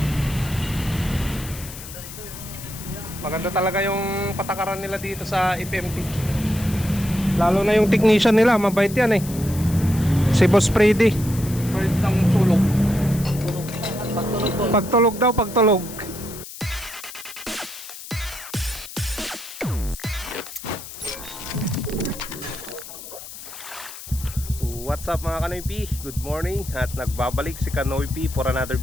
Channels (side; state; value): left; noise; hiss, 13 dB below the sound